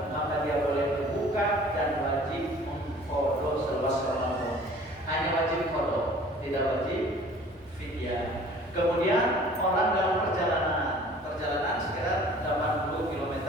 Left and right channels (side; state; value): both; normal; correlation 0.49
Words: maka dia boleh berbuka dan wajib mengqadha selepas Ramadan. Hanya wajib qadha, tidak wajib fidyah. Kemudian orang dalam perjalanan sekitar 80 km